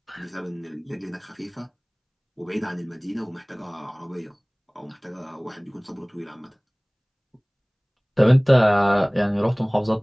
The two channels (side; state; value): both; identical; correlation 1.00